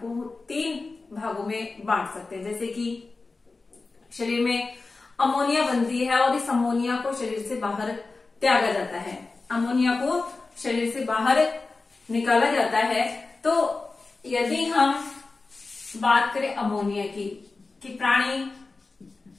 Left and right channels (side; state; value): right; quieter; 3.8 dB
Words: 3 भागों में बांट सकते हैं। जैसे कि शरीर में अमोनिया बनती है और इस अमोनिया को शरीर से बाहर त्यागा जाता है। अमोनिया को शरीर से बाहर निकाला जाता है। तो यदि हम बात करें अमोनिया की, कि प्राणी